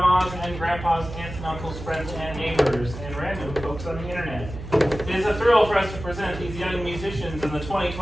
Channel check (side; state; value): right; noise; hum, 10 dB below the sound